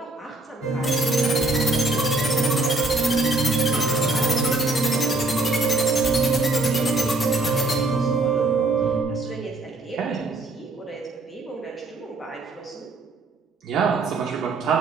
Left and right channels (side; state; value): left; quieter; 3.1 dB